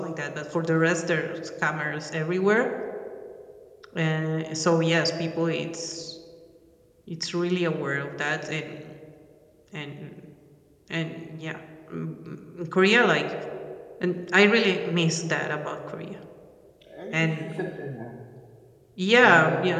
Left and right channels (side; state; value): both; identical; correlation 1.00